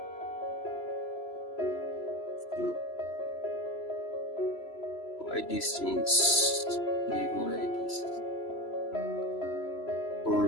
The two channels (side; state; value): right; late; 3.0 ms